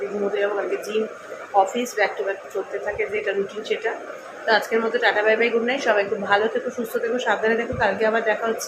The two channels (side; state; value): both; identical; correlation 1.00